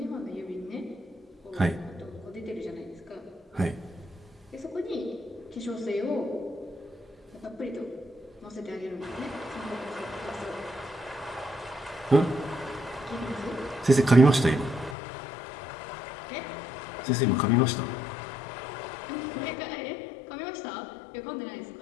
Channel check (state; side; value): drops out; right; at 15.0 s